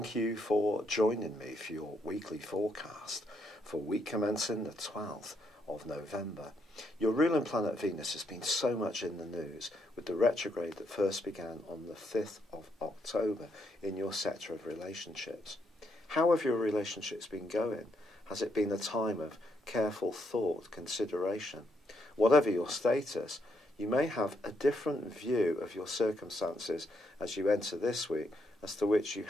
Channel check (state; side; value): normal; both; correlation 0.76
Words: you for joining me for your weekly forecast for week commencing the 12th of November. Your ruling planet Venus has been so much in the news with the retrograde that first began on the 5th of October in your sector of relationships. How have your relationships been going? Has it been a time of careful thought, consideration? Whatever your status, you may have a different view of your circumstances as you enter this week as to which you